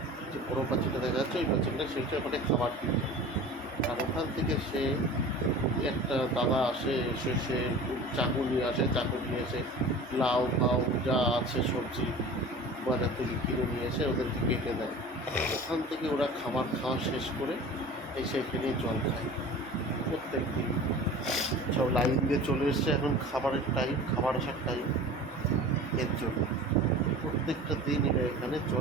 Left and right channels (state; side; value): normal; both; correlation 0.39